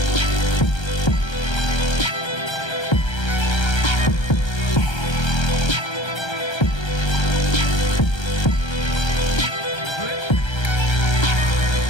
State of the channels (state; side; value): late; right; 1.3 ms